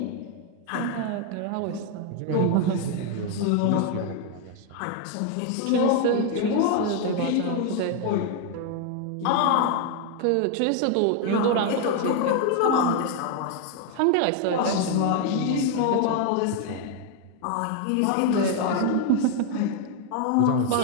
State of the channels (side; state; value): both; different; correlation 0.00